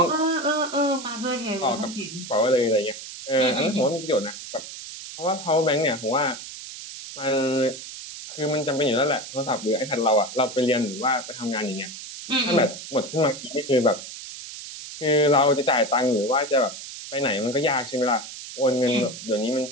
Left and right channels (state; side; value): noise; right; hiss, 11 dB below the sound